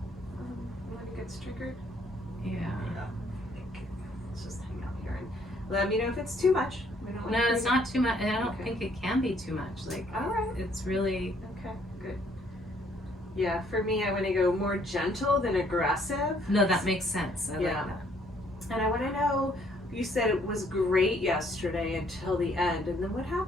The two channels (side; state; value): both; normal; correlation 0.65